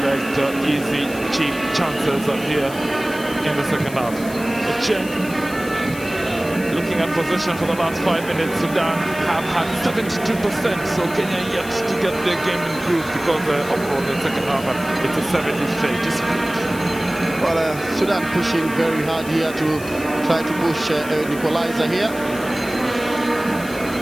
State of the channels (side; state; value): left; noise; hiss, 15 dB below the sound